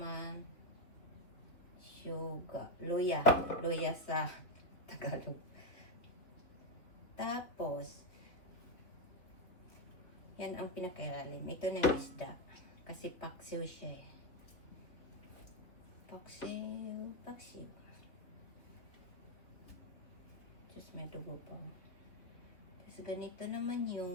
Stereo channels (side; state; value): right; late; 3.0 ms